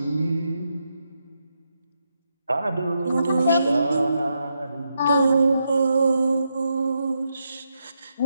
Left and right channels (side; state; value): both; inverted; correlation -0.83